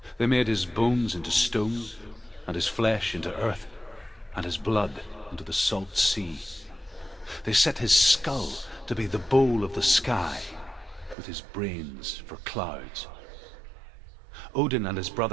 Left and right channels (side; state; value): left; drops out; at 11.2 s